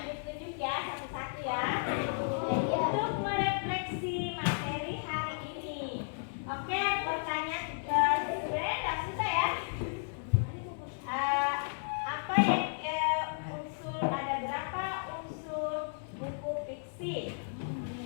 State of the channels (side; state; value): right; silent; digital silence